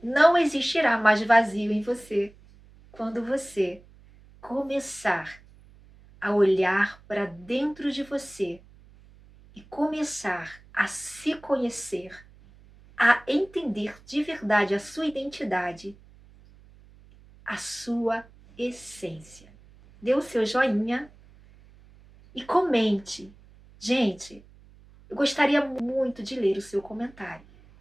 não existirá mais vazio em você quando você começar a olhar para dentro de você e começar a se conhecer, a entender de verdade a sua identidade, a sua essência. Dê o seu joinha e comente. Gente, eu gostaria muito de ler o seu comentário.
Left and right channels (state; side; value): noise; right; hum, 25 dB below the sound